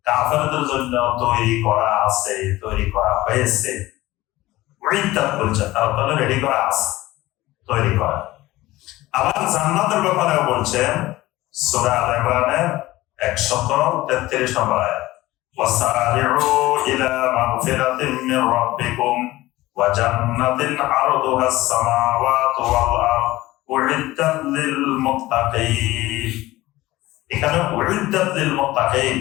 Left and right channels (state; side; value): quieter; right; 17.7 dB